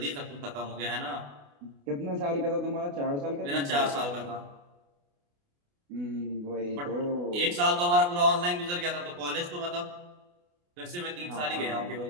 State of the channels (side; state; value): left; late; 28 ms